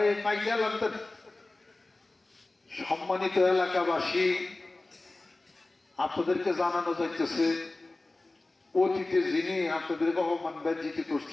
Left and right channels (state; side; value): quieter; right; 3.0 dB